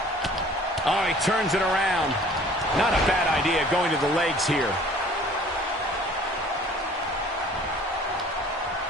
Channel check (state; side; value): normal; both; correlation 0.51